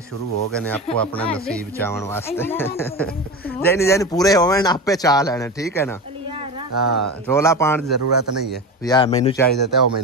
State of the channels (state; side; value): normal; both; correlation 0.25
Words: शुरू हो गए ने आपको अपना नसीब चावन वास्ते जैनी जैनी पूरे होवे ना आपे चा लेने ठीक है ना। हाँ रोला पाने की जरूरत नहीं है भी आ मैनू चाहिए तो